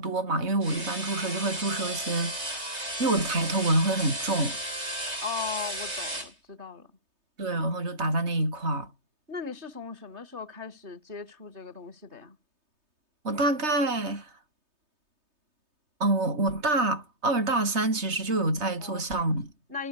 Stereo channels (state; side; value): late; left; 3.2 ms